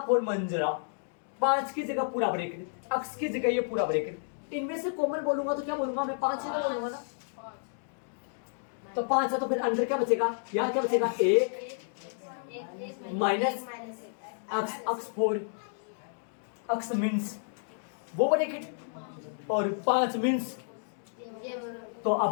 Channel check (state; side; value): silent; right; digital silence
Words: मंजिला, 5 की जगह पूरा ब्रैकेट, x की जगह ये पूरा ब्रैकेट। इनमें से कॉमन बोलूंगा तो क्या बोलूंगा मैं? 5 ही तो बोलूंगा ना। तो 5 है तो फिर अंदर क्या बचेगा? यहाँ क्या बचेगा? 1 माइनस x 4, x मीन्स वो ब्रैकेट, और 5 मीन्स। तो